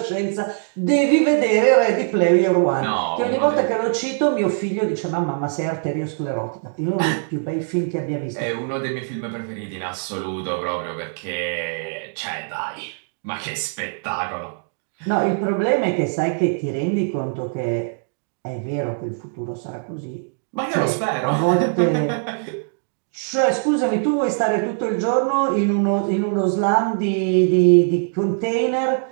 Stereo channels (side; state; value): left; silent; digital silence